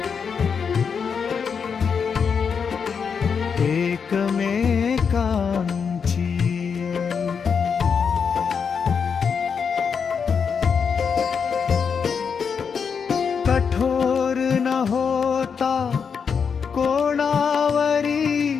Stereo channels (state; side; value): quieter; right; 6.3 dB